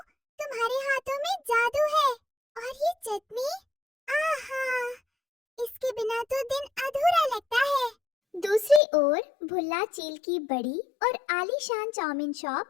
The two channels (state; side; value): drops out; right; at 8.8 s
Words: तुम्हारे हाथों में जादू है। और ये चटनी, आहा, इसके बिना तो दिन अधूरा लगता है। दूसरी ओर भुल्ला चील की बड़ी और आलीशान चाउमीन